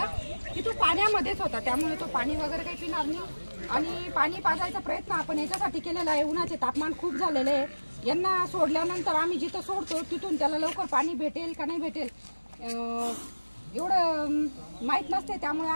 की तो पाण्यामध्येच होता त्यामुळे तो पाणी वगैरे काही पिणार नाही. आणि पाणी पाजायचा प्रयत्न आपण याच्यासाठी केलेला आहे. उन्हाचे तापमान खूप झालेले आहे. यांना सोडल्यानंतर आम्ही जिथं सोडतो तिथून त्याला लवकर पाणी भेटेल का नाही भेटेल एवढं माहीत नसते. त्यामुळे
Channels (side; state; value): both; inverted; correlation -1.00